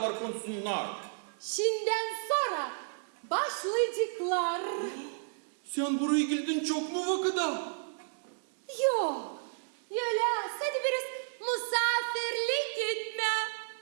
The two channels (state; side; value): silent; left; digital silence